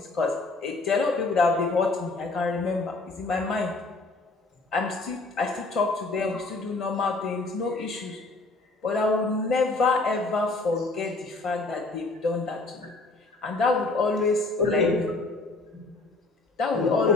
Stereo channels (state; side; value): quieter; right; 3.3 dB